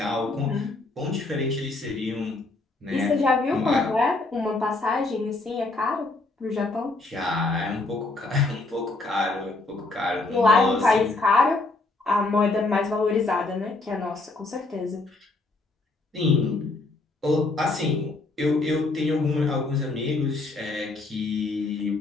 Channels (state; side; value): quieter; right; 3.3 dB